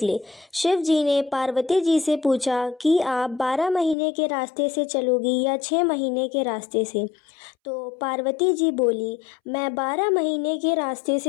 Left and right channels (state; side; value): drops out; right; at 4.0 s